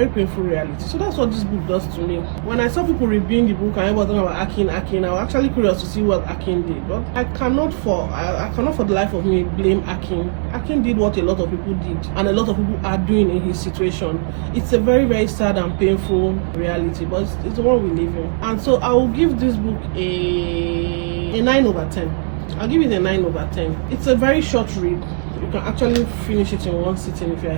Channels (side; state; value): left; silent; digital silence